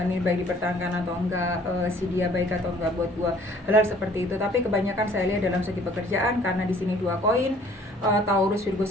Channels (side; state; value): both; normal; correlation 0.56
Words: ini baik dipertahankan atau enggak, si dia baik atau enggak buat gua, hal-hal seperti itu. Tapi kebanyakan saya lihat dalam segi pekerjaan, karena di sini dua koin, Taurus, Virgo